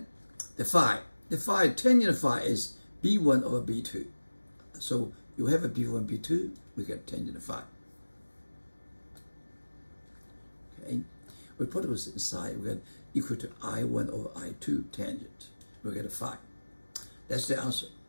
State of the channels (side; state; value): both; inverted; correlation -1.00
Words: the phi. The phi, tangent phi is B1 over B2. So you have a B1, B2, we get tangent phi. Okay. We put it inside, we get equal to I1 over I2 tangent. We get a phi. That's the answer.